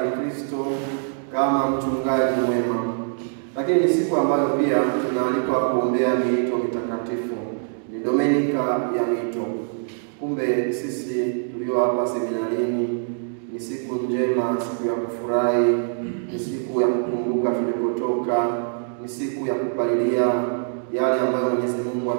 Kristo kama mchungaji mwema. Lakini ni siku ambayo pia tunaalikwa kuombea miito mitakatifu. Ni Dominika ya miito. Kumbe sisi tulio hapa seminarini, ni siku njema, siku ya kufurahi, ni siku ya kukumbuka tulipotoka, ni siku ya kupalilia yale ambayo Mwenyezi Mungu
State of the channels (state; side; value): silent; left; digital silence